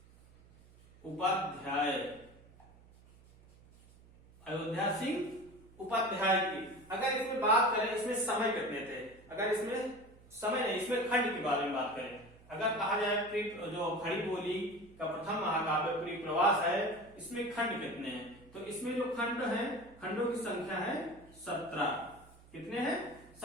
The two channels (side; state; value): right; noise; hum, 24 dB below the sound